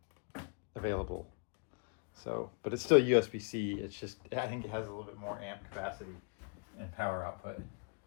available. So, but it's still USB-C. It's just, I think it has a little bit more amp capacity and power output.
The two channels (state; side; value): quieter; right; 38.8 dB